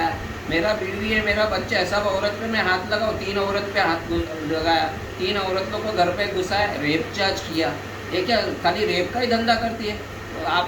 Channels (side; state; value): both; identical; correlation 1.00